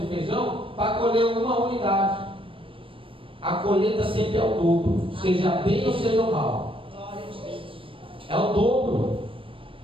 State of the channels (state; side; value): late; left; 0.25 ms